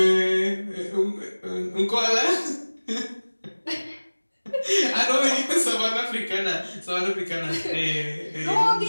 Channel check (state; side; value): inverted; both; correlation -1.00